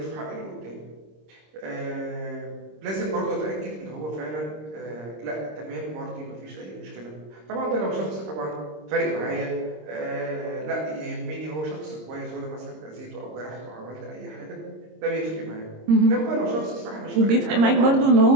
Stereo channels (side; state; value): left; late; 26 ms